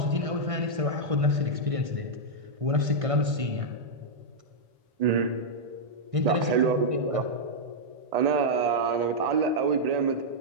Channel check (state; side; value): late; left; 1.6 ms